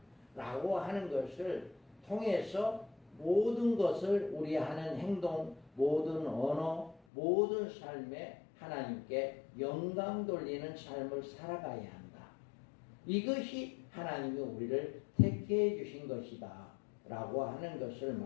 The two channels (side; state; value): right; drops out; at 7.0 s